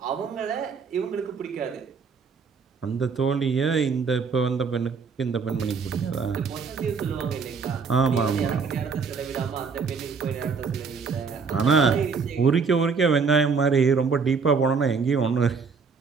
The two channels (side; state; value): left; quieter; 5.3 dB